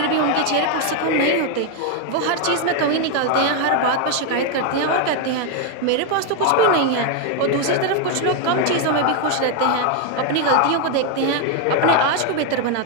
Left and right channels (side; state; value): both; different; correlation 0.01